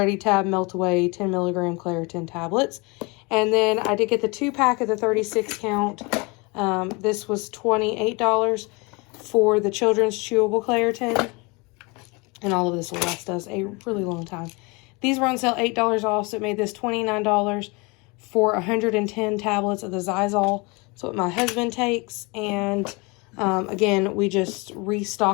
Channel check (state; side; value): quieter; right; 27.8 dB